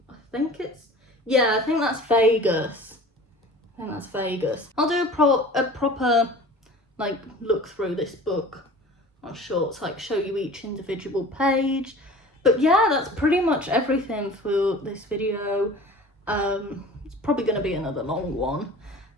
think it's, yeah, I think that's Vegas. I'll do a proper like look through this book on shorts, like show you each individual page. But yeah, that's pretty much everything for this video. It's probably going to be another long one,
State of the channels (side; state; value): both; normal; correlation 0.41